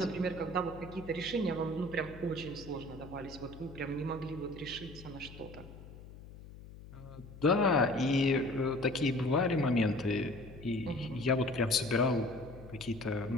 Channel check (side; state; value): left; noise; hum, 16 dB below the sound